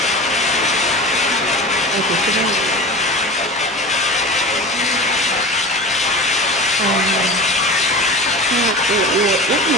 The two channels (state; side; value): normal; both; correlation 0.33